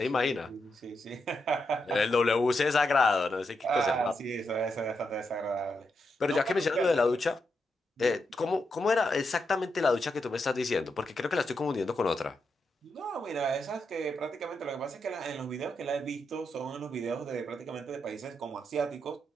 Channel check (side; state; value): both; normal; correlation 0.84